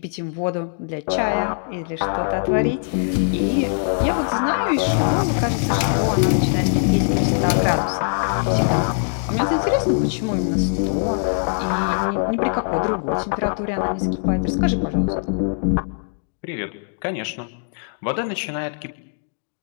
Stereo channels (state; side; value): silent; right; digital silence